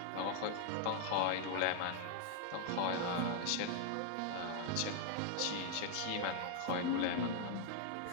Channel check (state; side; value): different; both; correlation 0.00